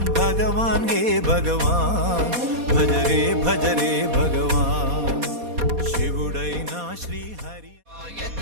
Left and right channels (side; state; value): left; late; 4.2 ms